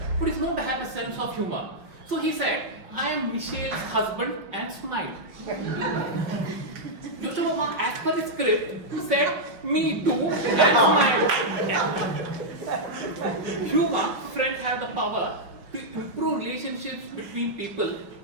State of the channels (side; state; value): left; late; 5.5 ms